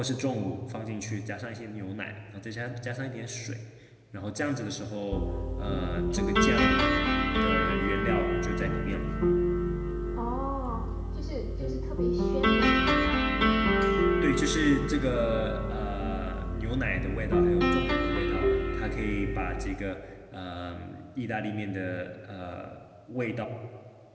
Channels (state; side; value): identical; both; correlation 1.00